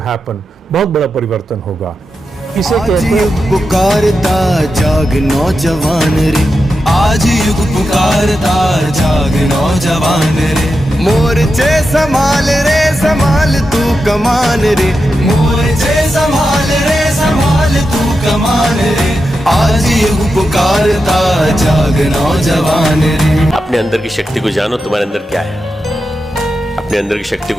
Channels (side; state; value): both; normal; correlation 0.89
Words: बहुत बड़ा परिवर्तन होगा। इसे कहते हैं पुकारता जाग नौजवान रे, आज युग पुकारता जाग नौजवान रे, मोर्चे संभाल रे संभाल तू कमान रे, मोर्चे संभाल रे संभाल तू कमान रे, आज युग पुकारता जाग नौजवान रे। अपने अंदर की शक्ति को जानो, तुम्हारे अंदर क्या है। अपने अंदर की शक्ति